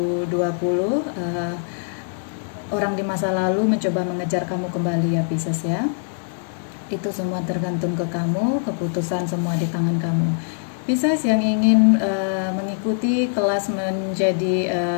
Orang di masa lalu mencoba mengejar kamu kembali ya, Pisces ya. Itu semua tergantung ke kamu, keputusan semua di tangan kamu. Pisces yang ingin mengikuti kelas menjadi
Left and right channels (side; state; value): right; silent; digital silence